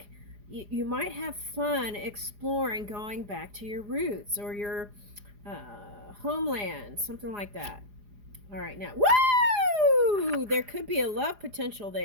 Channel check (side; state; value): left; late; 4.9 ms